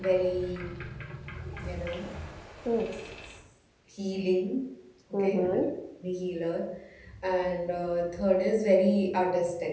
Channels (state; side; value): identical; both; correlation 1.00